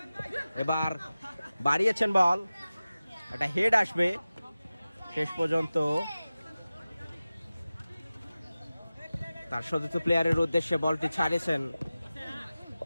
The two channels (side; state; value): both; inverted; correlation -0.96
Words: এবার বাড়িয়েছেন বল, একটা হেড আসবে। শেষ পর্যন্ত তার চতুর্থ প্লেয়ারের উদ্দেশ্যে বলটি ছাড়িয়েছেন।